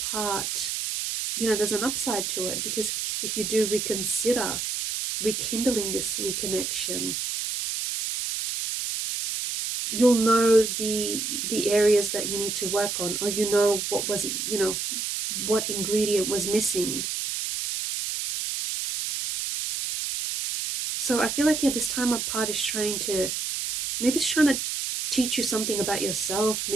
you know, there's an upside to it, because if you do reconsider rekindling this reconnection, you'll know the areas that you need to work on, or you know what was, you know, what ingredient was missing. So I feel like, yeah, this time apart is trying to, maybe it's trying to teach you something about yourself,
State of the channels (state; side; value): noise; right; hiss, 2 dB below the sound